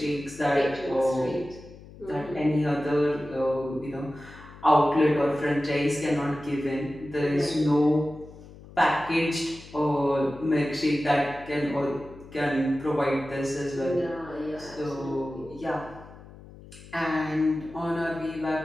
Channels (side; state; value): left; noise; hum, 19 dB below the sound